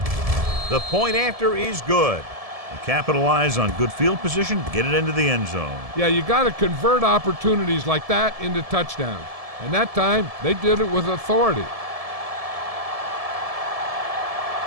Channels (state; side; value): late; left; 1.7 ms